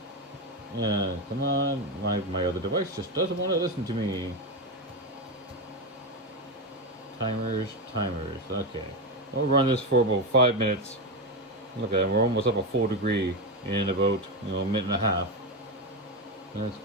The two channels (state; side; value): normal; both; correlation 0.12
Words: Come on. My other device just doesn't want to listen to me. Timers. Okay. We'll run this for about 5 minutes. Look at that. We're almost up a full degree in about a minute and a half. Let's